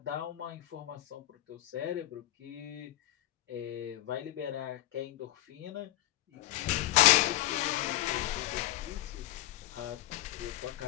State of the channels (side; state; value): right; quieter; 15.8 dB